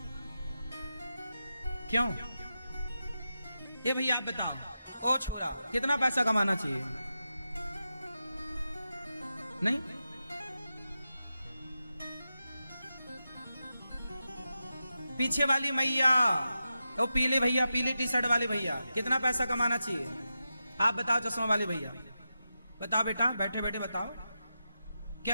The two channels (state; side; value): inverted; both; correlation -0.90